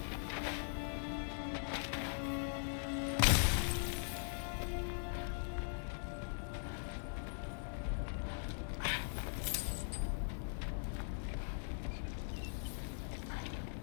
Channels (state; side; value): silent; right; 50 dB below the other